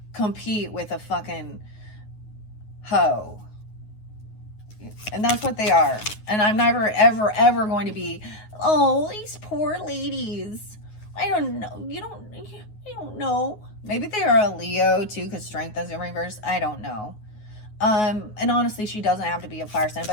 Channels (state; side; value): late; right; 9.4 ms